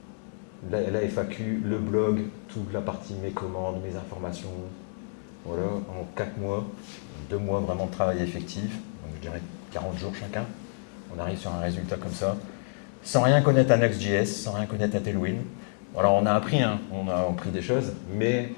la FAQ, le blog, toute la partie mes commandes, mes informations. Voilà, en 4 mois, 2 mois vraiment de travail effectif, donc je dirais 40 jours chacun. On arrive sur un résultat comme ça, sans rien connaître à Next.js, sans rien connaître à Tailwind. Alors on a appris, hein, on a appris des choses, mais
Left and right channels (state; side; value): silent; right; digital silence